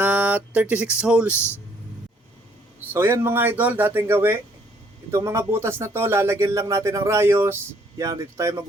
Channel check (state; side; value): normal; both; correlation 0.64